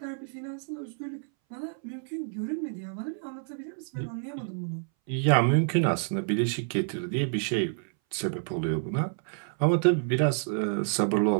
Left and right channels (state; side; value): silent; left; 59 dB below the other